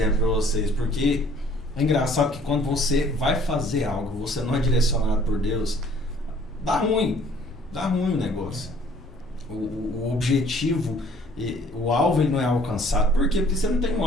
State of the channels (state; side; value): normal; both; correlation 0.57